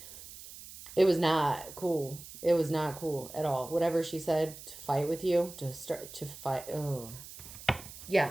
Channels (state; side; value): noise; right; hiss, 15 dB below the sound